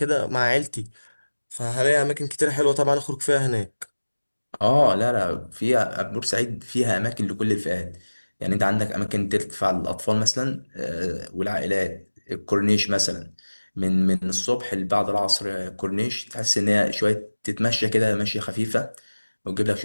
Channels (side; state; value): both; inverted; correlation -1.00